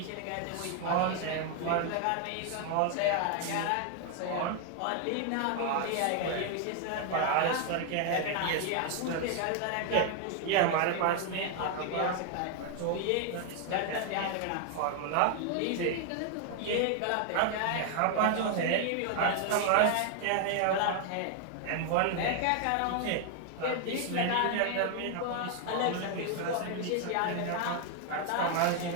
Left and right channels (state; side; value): different; both; correlation 0.00